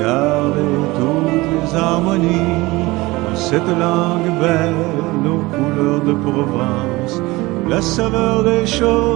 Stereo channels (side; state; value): left; quieter; 21.2 dB